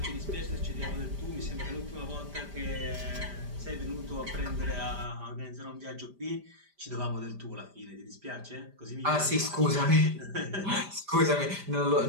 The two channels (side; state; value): left; late; 5.0 ms